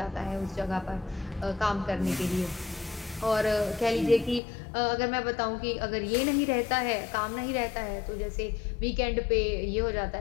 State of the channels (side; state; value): right; drops out; at 4.4 s